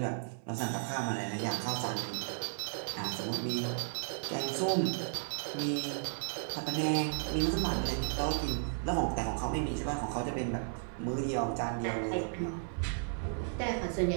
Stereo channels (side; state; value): left; silent; 55 dB below the other